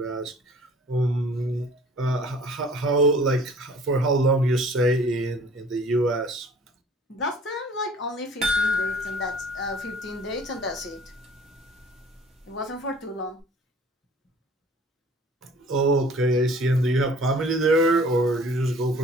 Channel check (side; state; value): both; normal; correlation 0.51